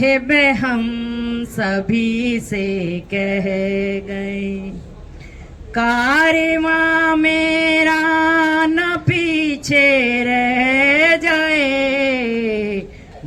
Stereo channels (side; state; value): both; identical; correlation 1.00